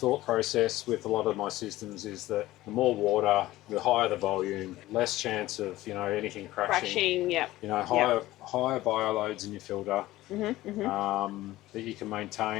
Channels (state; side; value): quieter; right; 16.7 dB